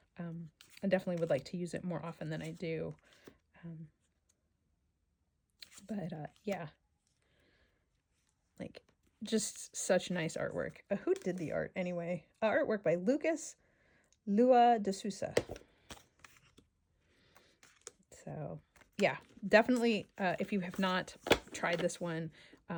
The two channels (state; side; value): identical; both; correlation 1.00